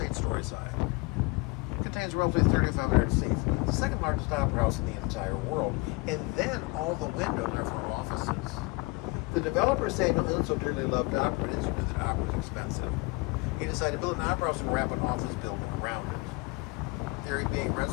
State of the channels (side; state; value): right; quieter; 26.0 dB